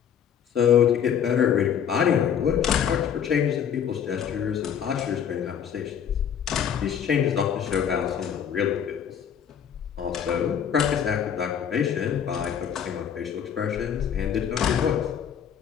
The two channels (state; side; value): quieter; right; 8.3 dB